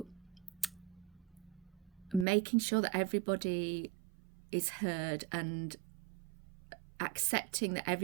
making sure that everybody is heard and accepting that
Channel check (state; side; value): drops out; left; at 2.2 s